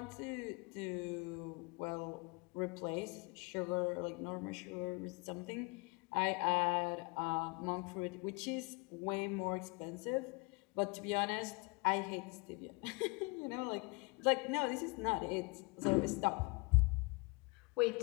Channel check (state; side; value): quieter; right; 28.5 dB